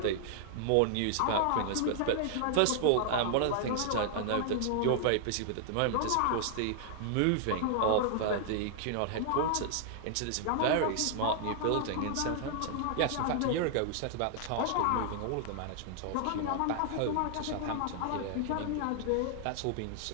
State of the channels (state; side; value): different; both; correlation 0.00